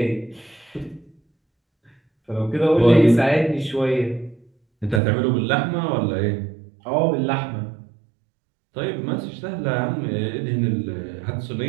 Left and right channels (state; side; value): drops out; left; at 5.0 s